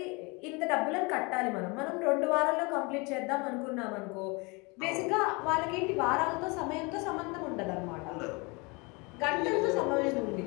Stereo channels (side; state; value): right; quieter; 28.2 dB